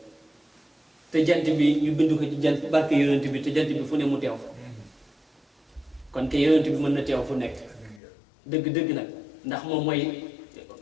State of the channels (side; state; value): right; drops out; at 8.0 s